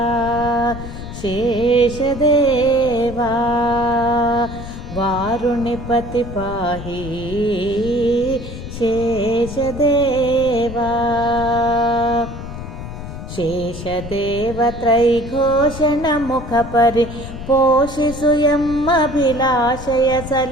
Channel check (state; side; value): noise; left; rumble, 10 dB below the sound